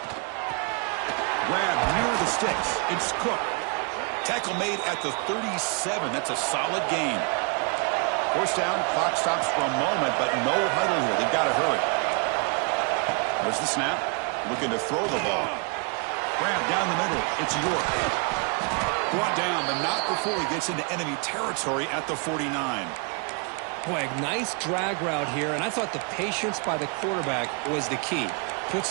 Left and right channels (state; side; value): quieter; left; 35.4 dB